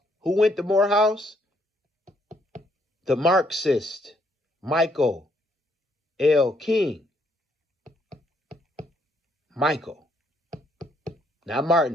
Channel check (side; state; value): both; normal; correlation 0.71